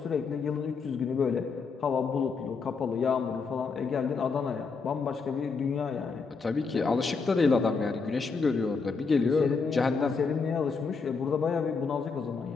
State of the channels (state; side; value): quieter; right; 4.8 dB